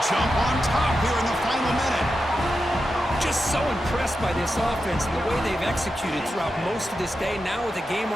jump on top here in the final minute. Just so impressed by this offense and the way they've executed throughout most of this day. Now with the game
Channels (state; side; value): normal; both; correlation 0.89